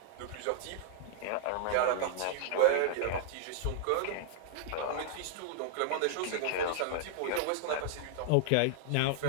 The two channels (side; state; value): both; different; correlation -0.01